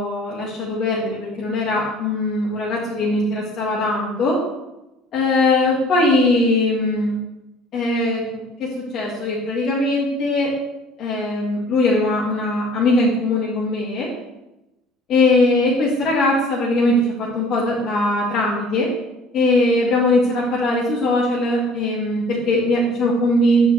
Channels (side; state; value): both; normal; correlation 0.50